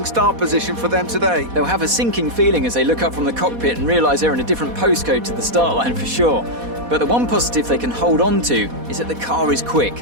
start position for them today. They'll have a sinking feeling as they look up from the cockpit and realise they're in a different postcode to the start line for sure. But the one positive they can hold on to is that the car is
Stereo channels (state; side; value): late; left; 4.1 ms